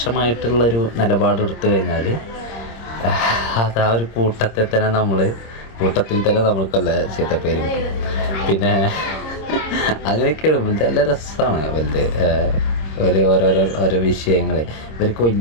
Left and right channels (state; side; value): late; right; 26 ms